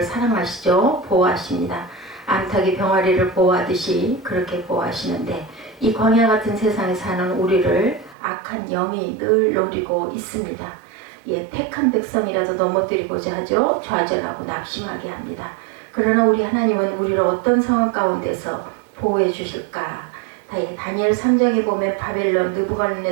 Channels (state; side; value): drops out; left; at 8.2 s